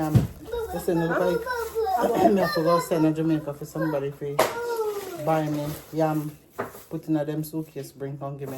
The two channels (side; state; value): both; identical; correlation 1.00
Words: listen, look like I have to go send to Jamaica for somebody for buy me yam, put in a them suitcase, bring come give